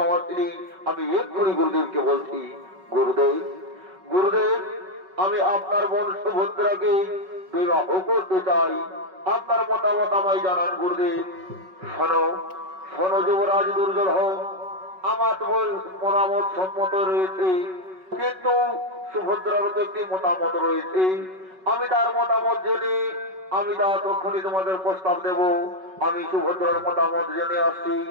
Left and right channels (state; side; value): late; left; 5.3 ms